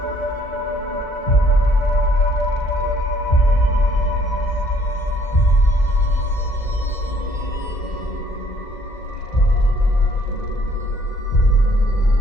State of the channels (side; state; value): right; late; 1.9 ms